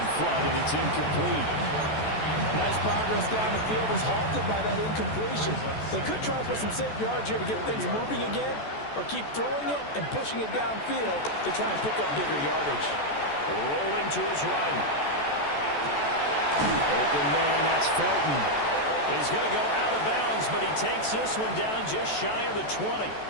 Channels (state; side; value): late; right; 14 ms